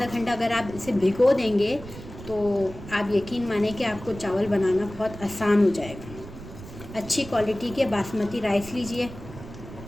घंटा अगर आप इसे भिगो देंगे तो आप यकीन माने कि आपको चावल बनाना बहुत आसान हो जाएगा। अच्छी क्वालिटी के बासमती राइस लीजिए।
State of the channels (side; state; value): right; noise; rumble, 14 dB below the sound